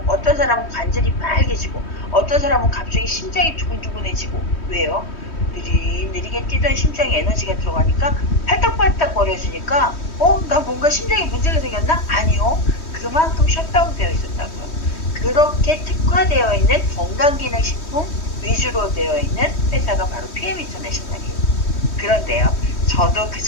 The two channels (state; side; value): late; right; 3.1 ms